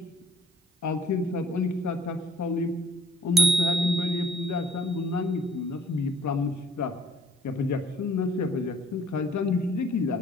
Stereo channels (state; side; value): normal; both; correlation 0.56